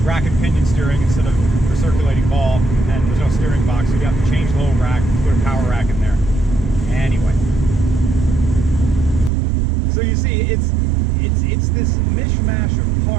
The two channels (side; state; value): left; drops out; at 9.3 s